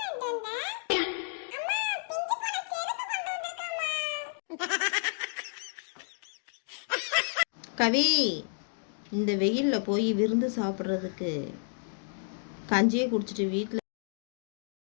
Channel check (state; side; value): silent; right; digital silence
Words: கவி, இந்த வெயிலில் போய் விருந்து சாப்பிட்றதுக்கு கஞ்சியே குடிச்சிட்டு வீட்டில்